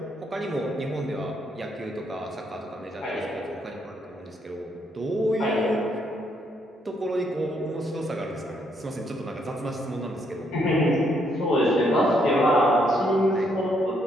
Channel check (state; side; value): normal; both; correlation 0.73